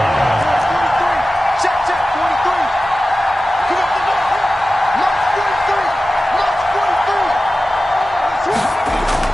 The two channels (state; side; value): normal; both; correlation 0.95